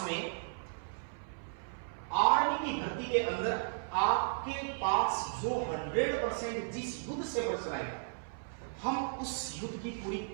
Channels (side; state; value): left; silent; 54 dB below the other